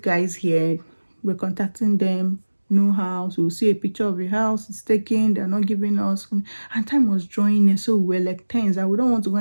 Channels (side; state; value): both; inverted; correlation -1.00